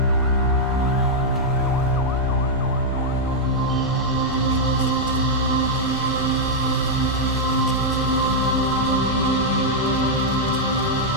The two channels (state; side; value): normal; both; correlation -0.05